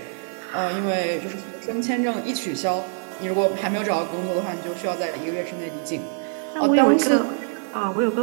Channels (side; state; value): left; silent; 56 dB below the other